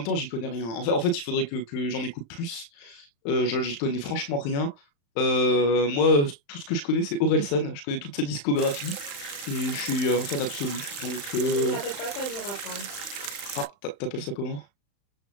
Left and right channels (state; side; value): late; right; 35 ms